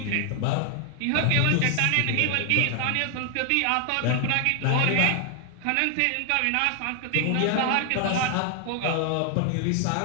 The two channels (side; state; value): both; different; correlation 0.00